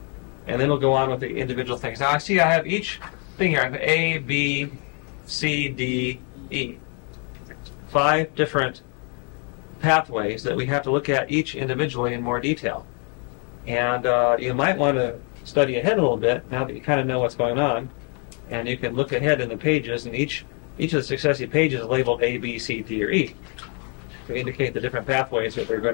and then we'll go on with the individual things. Now I see I have each thing here. I have A, B, C, D, E. 5 different pathways that we have to look at each individually in more detail. And you might want to study ahead a little bit now that you kind of know what's going on. And you can look ahead in the pages, and each of the successive pages is labeled A, B, C, D, or E to indicate the different pathways that we're going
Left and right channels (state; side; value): quieter; right; 37.5 dB